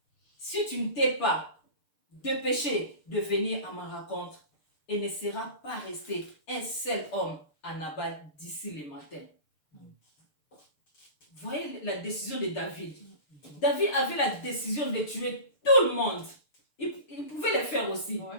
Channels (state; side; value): late; right; 6.7 ms